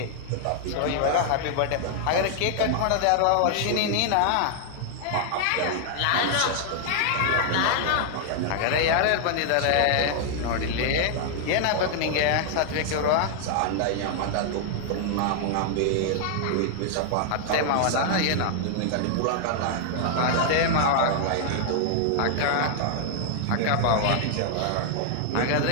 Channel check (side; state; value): both; different; correlation 0.00